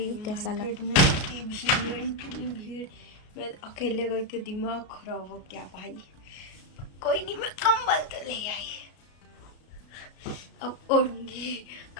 कैसा लगा। इतनी भीड़, मैं अकेले गई तो दिमाग खराब हो गया भाई। कोई नहीं, मैं कंबल तो ले आई, अब ओढ़ूंगी।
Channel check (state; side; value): late; right; 33 ms